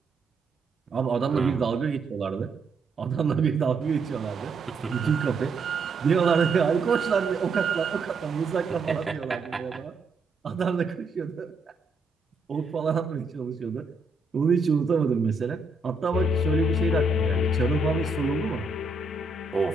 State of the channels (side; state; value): left; quieter; 3.4 dB